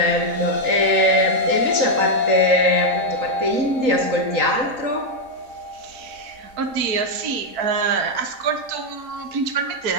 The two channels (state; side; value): late; left; 3.8 ms